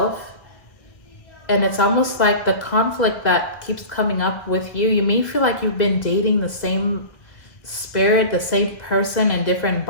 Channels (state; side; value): late; right; 1.3 ms